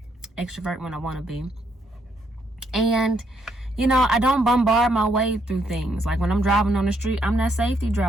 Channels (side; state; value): both; normal; correlation 0.74